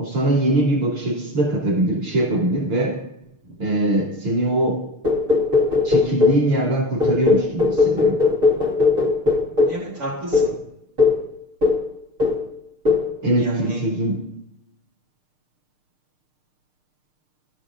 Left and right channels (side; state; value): left; late; 6.6 ms